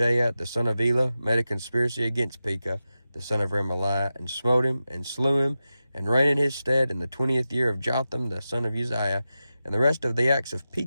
the son of Elah, made a conspiracy against Pekah, the son of Remaliah, and smote him, and slew him, and reigned in his stead in the 20th year of Jotham, the son of Uzziah. And the rest of the acts of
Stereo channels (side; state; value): both; inverted; correlation -0.92